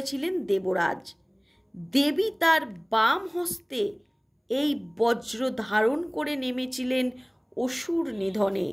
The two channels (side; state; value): both; identical; correlation 1.00